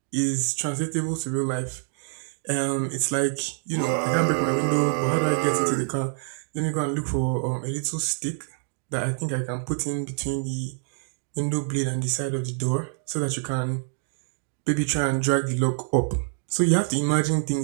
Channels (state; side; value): silent; left; 60 dB below the other